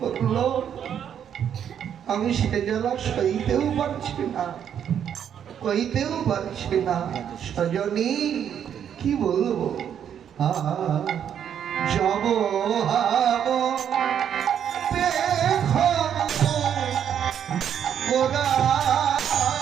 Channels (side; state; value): left; quieter; 8.9 dB